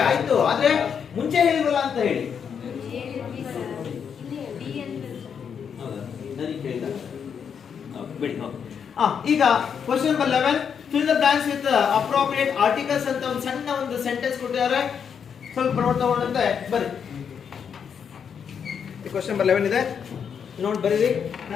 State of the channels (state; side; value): quieter; right; 7.2 dB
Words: ಆಯ್ತು, ಆದ್ರೆ ಮುಂಚೆ ಹೇಳಿರಲ್ಲ ಅಂತ ಹೇಳಿ. ಈಗ question number 11, fill the blanks with appropriate articles ಅಂತ ಒಂದು ಸಣ್ಣ ಒಂದು ಸೆಂಟೆನ್ಸ್ ಕೊಟ್ಟಿದ್ದಾರೆ. ಸ್ವಲ್ಪ ನೋಡ್ತಾ ಹೋದಂತೆ ಬರ್ರಿ. ಕ್ವೆಶ್ಚನ್ ನಂಬರ್ 11 ಇದೆ, ನೋಡಿ ಬರೀರಿ.